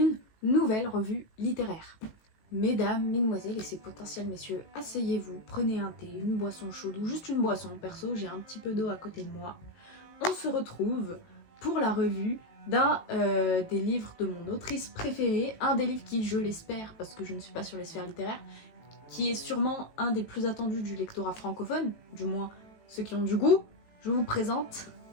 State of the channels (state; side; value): late; right; 18 ms